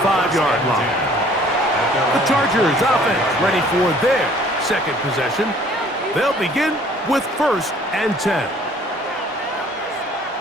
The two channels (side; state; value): both; normal; correlation 0.56